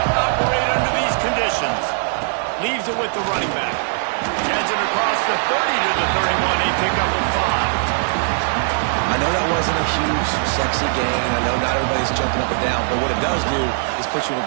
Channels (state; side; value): silent; left; 66 dB below the other